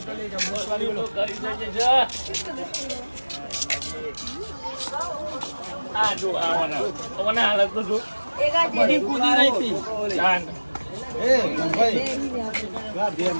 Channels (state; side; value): inverted; both; correlation -1.00